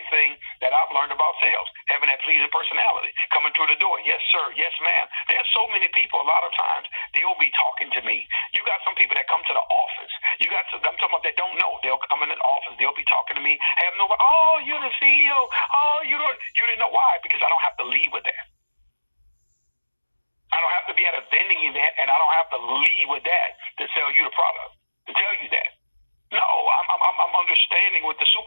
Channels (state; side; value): inverted; both; correlation -1.00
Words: thing that I've learned about sales, having that pleasing personality, coming through the door. Yes, sir. Yes, ma'am. There's so many people, a lot of times, they'll be talking to me. You got some people that come to the office. I'm talking about that don't know. They'll come in the office. They'll be talking to me. Have no, oh, you're the CEO. Oh, you didn't know why? Because I don't have to lead with that. I don't have to be at a vending event, and I don't have to lead with that to sell you the product, to tell you that. No, I'm understanding what the